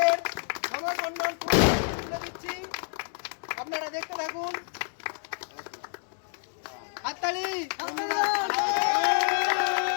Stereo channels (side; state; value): right; silent; 59 dB below the other